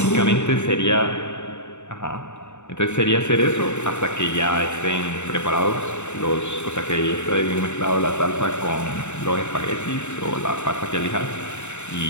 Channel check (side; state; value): right; late; 0.83 ms